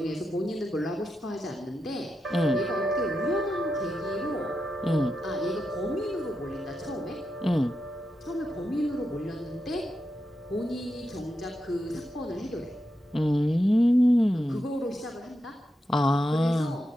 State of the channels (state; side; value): normal; both; correlation 0.87